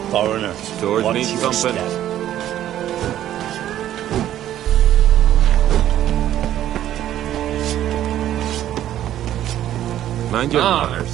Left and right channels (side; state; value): left; quieter; 12.1 dB